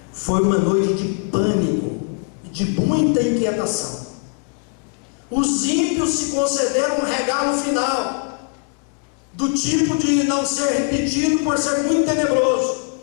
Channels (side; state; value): right; quieter; 37.1 dB